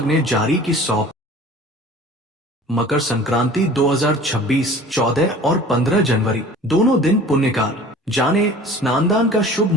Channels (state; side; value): normal; both; correlation 0.44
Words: ने जारी की 100। मकर संक्रांति 2026 14 और 15 जनवरी दोनों दिन पुण्यकाल। जाने स्नानदान का शुभ